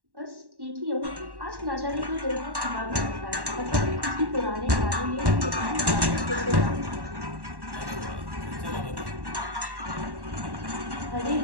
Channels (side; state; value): left; late; 1.1 ms